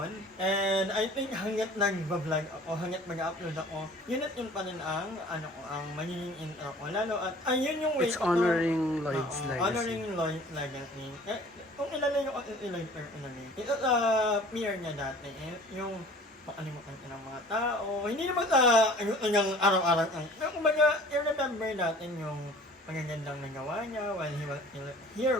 And I think hanggat nag-vlog ako, hanggat mag-upload ako, yun at yun pa rin ang, ang magiging intro ko. Lalo at, ayun yung way It's honoring Lloyd's legacy. Honoring Lloyd's legacy. Kung ilalay ko Lloyd personally, ito sa peer niya dati, yung makalimutan ka ng mga tao. Hindi naman sa yung araw-araw. Pero kumbaga, i-remember natin yung magagandang nagawa niya while he was still here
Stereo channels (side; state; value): both; normal; correlation 0.48